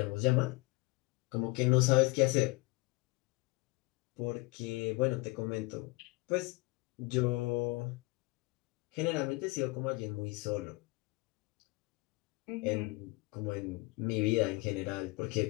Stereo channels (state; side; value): quieter; right; 24.2 dB